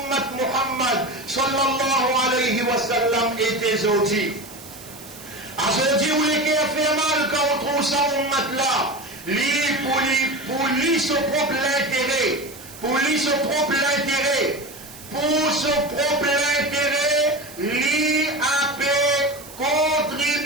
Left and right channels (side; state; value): right; noise; hiss, 17 dB below the sound